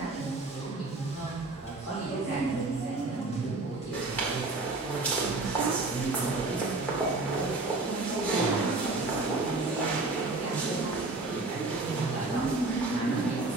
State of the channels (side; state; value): left; quieter; 3.3 dB